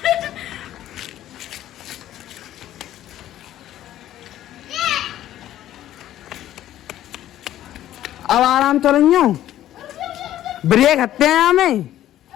अब आराम तो नहीं हो, ब्रेक हत्ते हैं हमें।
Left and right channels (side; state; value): right; quieter; 12.8 dB